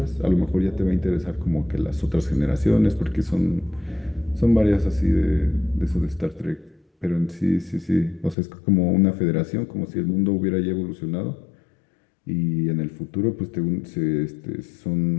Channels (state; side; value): drops out; right; at 8.3 s